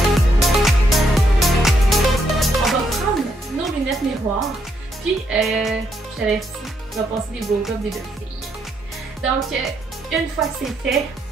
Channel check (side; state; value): both; normal; correlation 0.76